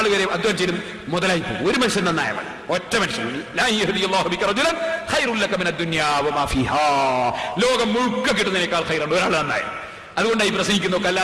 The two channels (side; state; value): both; identical; correlation 1.00